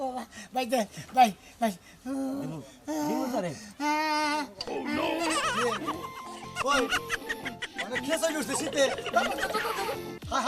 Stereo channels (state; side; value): identical; both; correlation 1.00